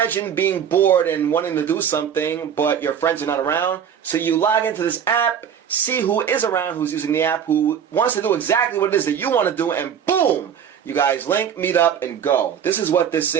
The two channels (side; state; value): left; quieter; 8.3 dB